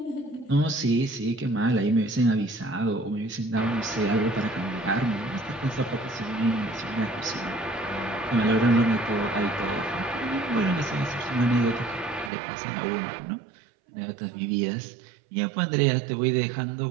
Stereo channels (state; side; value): drops out; left; at 12.3 s